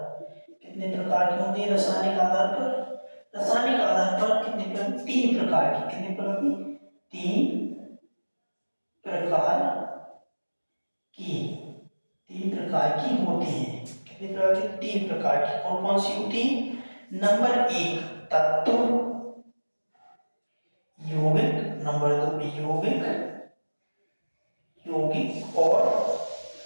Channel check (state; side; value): inverted; both; correlation -1.00